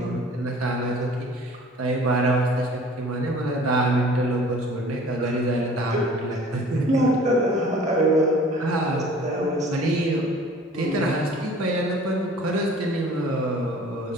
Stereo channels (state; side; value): normal; both; correlation 0.48